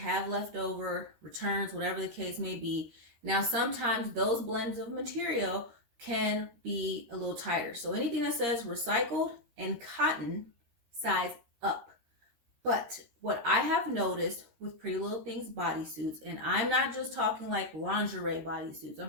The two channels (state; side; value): late; left; 13 ms